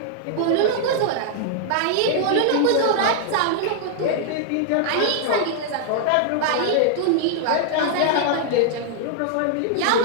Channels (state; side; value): different; both; correlation -0.01